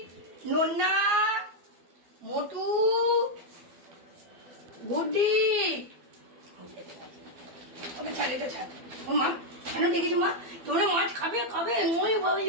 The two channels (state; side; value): late; left; 12 ms